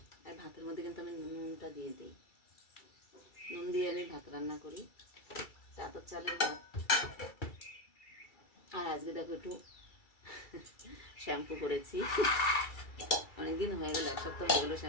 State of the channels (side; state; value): right; late; 2.3 ms